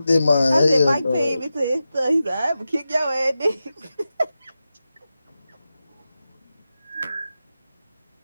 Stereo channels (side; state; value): both; inverted; correlation -0.91